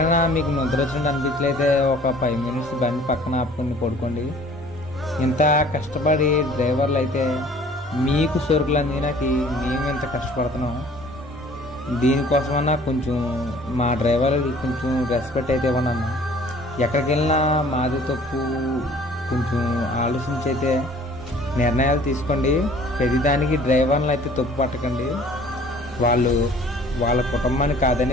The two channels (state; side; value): normal; both; correlation 0.52